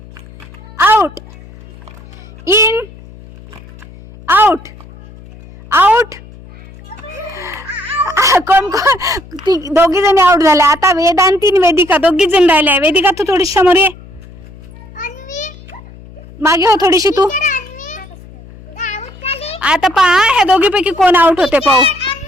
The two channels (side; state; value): left; noise; hum, 20 dB below the sound